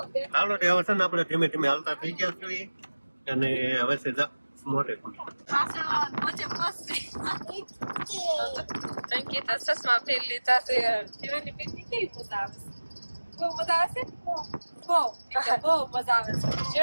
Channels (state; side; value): inverted; both; correlation -1.00